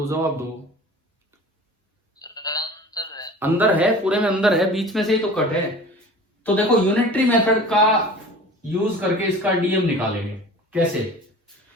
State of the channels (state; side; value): normal; both; correlation 0.40